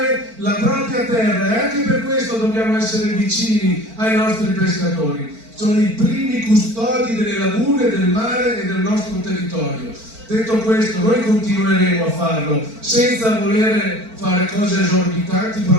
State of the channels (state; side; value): late; left; 4.5 ms